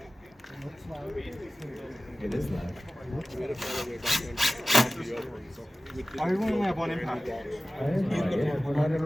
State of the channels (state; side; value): normal; both; correlation 0.97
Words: It is loud. I only have one impact. I have no idea. We're not in a